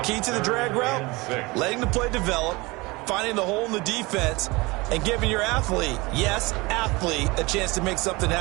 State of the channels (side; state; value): left; quieter; 23.7 dB